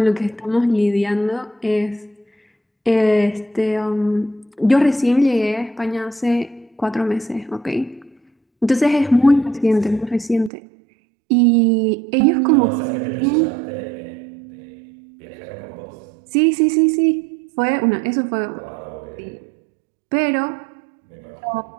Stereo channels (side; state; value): left; drops out; at 10.5 s